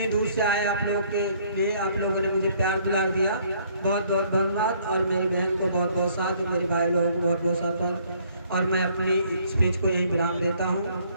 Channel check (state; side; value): inverted; both; correlation -0.63